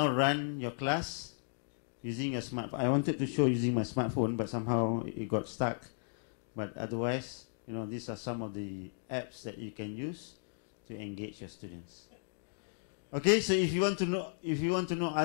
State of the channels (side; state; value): right; silent; digital silence